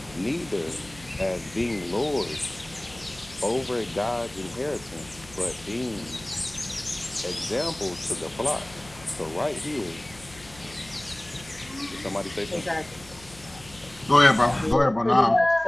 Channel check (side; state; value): left; noise; hum, 21 dB below the sound